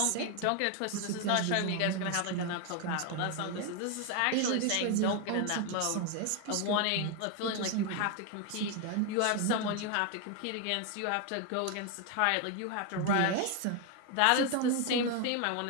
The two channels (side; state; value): both; different; correlation 0.01